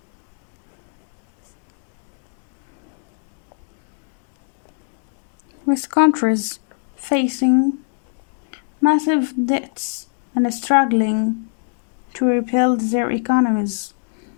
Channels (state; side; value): silent; right; digital silence